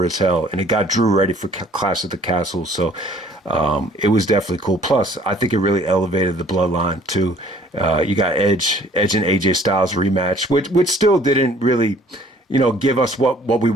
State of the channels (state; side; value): normal; both; correlation 0.56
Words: as hell, and it got Drew ready for Clash of the Castle. So it was definitely cool. Plus, I think it really elevated the bloodline, too. You got Edge and AJ Styles rematch, which still didn't really give us what we